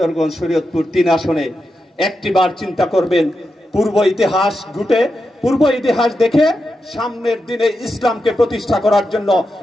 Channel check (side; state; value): both; normal; correlation 0.88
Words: শরীয়তপুর 3 আসনে একটিবার চিন্তা করবেন, পূর্ব ইতিহাস দেখে সামনের দিনে ইসলামকে প্রতিষ্ঠা করার জন্য,